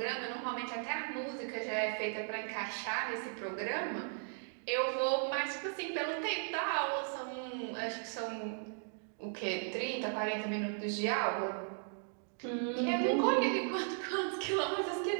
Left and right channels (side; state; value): left; silent; 53 dB below the other